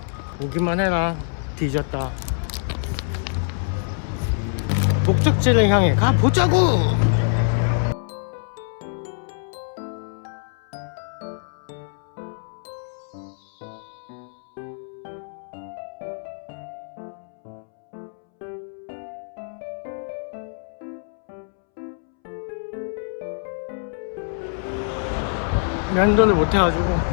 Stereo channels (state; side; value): silent; right; 62 dB below the other